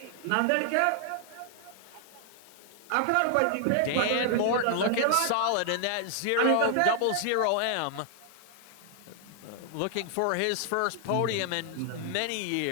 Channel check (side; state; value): both; different; correlation 0.00